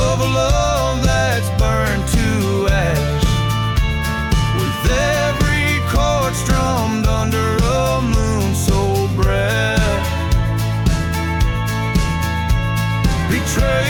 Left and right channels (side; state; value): both; identical; correlation 1.00